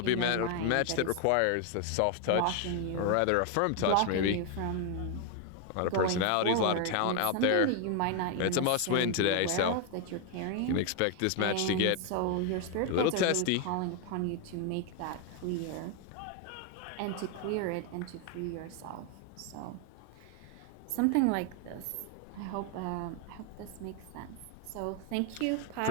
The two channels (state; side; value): different; both; correlation 0.01